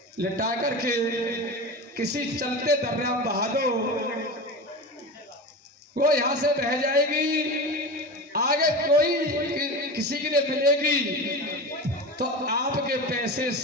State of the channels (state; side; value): normal; both; correlation 0.27